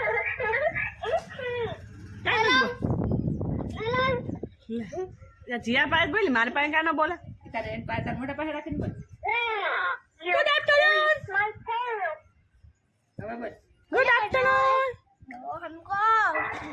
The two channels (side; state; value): both; identical; correlation 1.00